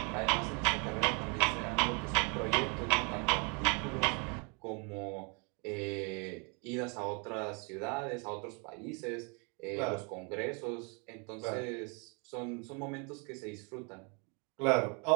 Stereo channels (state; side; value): quieter; left; 34.4 dB